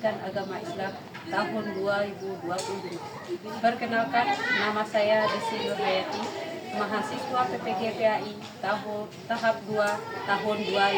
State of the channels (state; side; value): identical; both; correlation 1.00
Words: Agama Islam tahun 2020. Perkenalkan, nama saya Desi Nurhayati, mahasiswa PPG PAI tahap 2 tahun